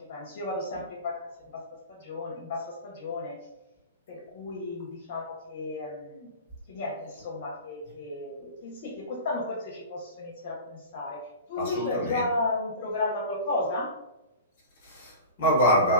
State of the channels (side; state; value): both; inverted; correlation -0.34